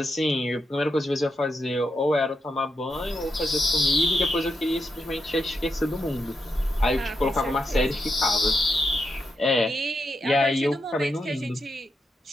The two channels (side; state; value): both; normal; correlation 0.84